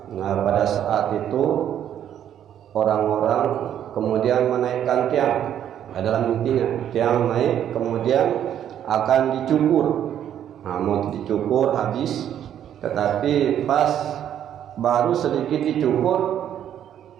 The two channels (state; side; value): quieter; left; 10.1 dB